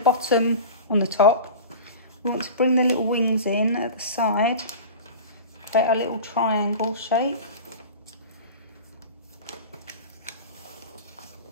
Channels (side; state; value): both; inverted; correlation -0.34